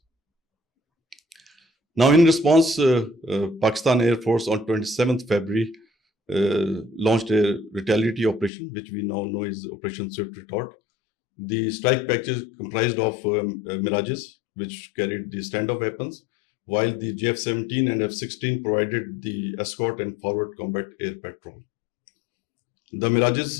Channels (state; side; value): drops out; right; at 8.5 s